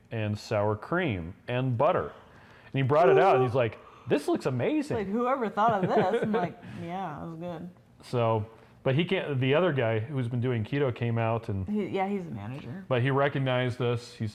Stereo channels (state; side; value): identical; both; correlation 1.00